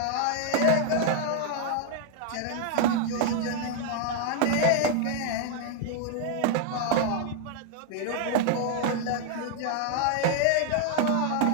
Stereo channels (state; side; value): different; both; correlation 0.00